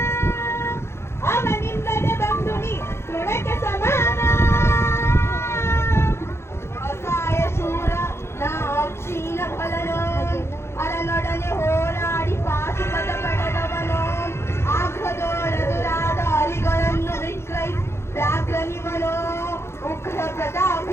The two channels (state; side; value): late; right; 0.12 ms